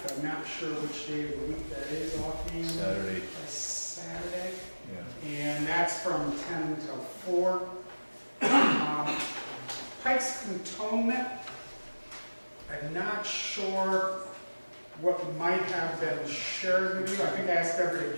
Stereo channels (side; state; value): both; inverted; correlation -1.00